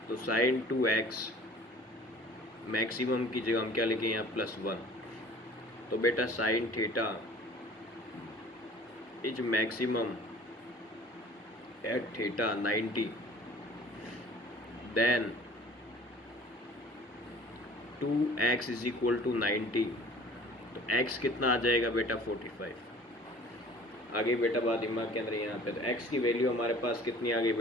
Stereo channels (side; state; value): both; normal; correlation 0.47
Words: तो sin 2x मैक्सिमम की जगह हम क्या लिखें? यहाँ +1। तो बेटा sin theta is maximum at theta 90, then 2x = 90। तो x कितना आ जाएगा बेटा? 45। आगे बेटा बात दिमाग के अंदर यहाँ पे, तो x की वैल्यू हमारे पास कितनी आ गई